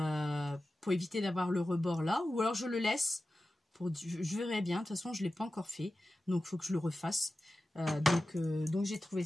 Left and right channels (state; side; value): normal; both; correlation 0.94